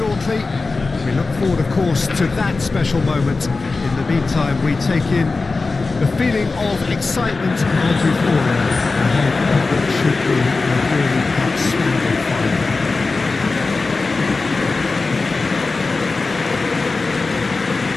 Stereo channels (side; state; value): right; quieter; 3.8 dB